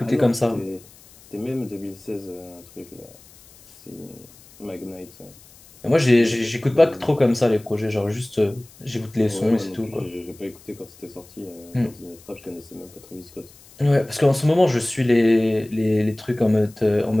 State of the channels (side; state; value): left; noise; hiss, 24 dB below the sound